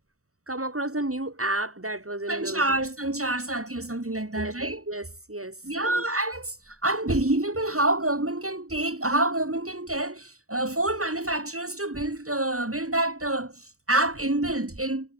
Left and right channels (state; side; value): late; left; 0.65 ms